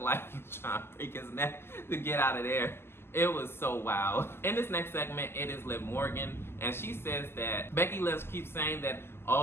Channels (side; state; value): right; late; 0.12 ms